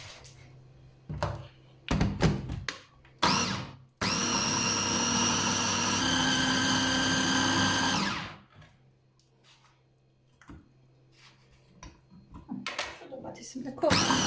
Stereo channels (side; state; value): both; identical; correlation 1.00